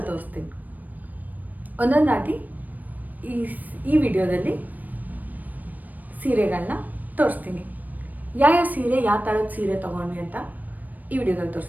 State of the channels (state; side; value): late; left; 0.083 ms